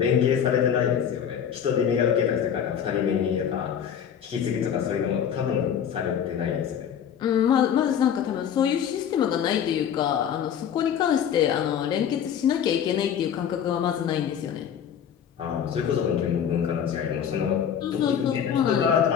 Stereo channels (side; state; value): right; quieter; 8.6 dB